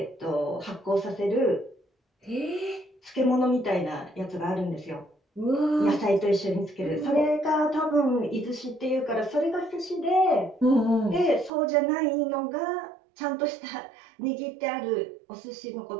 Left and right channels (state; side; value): drops out; left; at 11.5 s